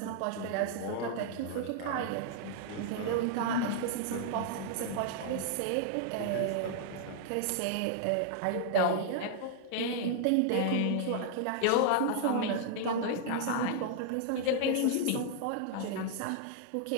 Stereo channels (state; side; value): different; both; correlation -0.01